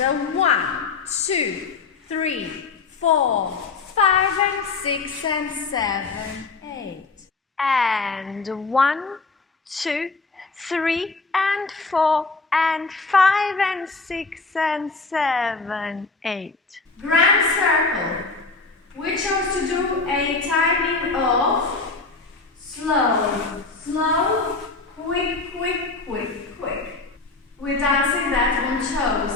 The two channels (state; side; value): quieter; right; 4.0 dB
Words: 1, 2, 3, 4, 5, and 6, and 7, 8. And 1, 2, 3, and 4, and 5, and 6, and 7, 8. Grand circle. We chose to do a timing of slow, slow, quick, quick, quick, quick. We're dancing that on